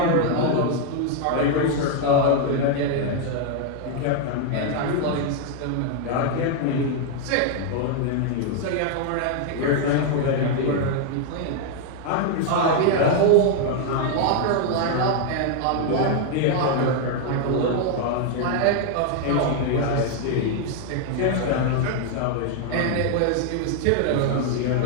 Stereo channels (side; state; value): both; different; correlation 0.00